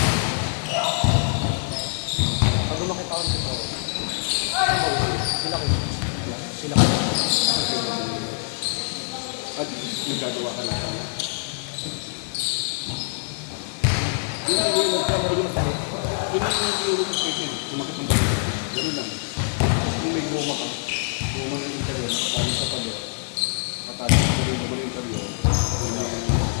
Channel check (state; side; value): silent; right; 62 dB below the other